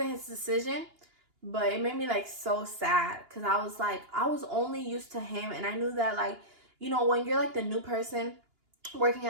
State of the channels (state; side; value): late; left; 2.9 ms